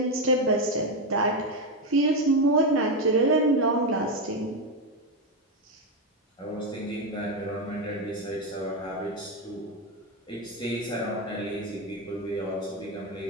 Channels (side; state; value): both; normal; correlation 0.09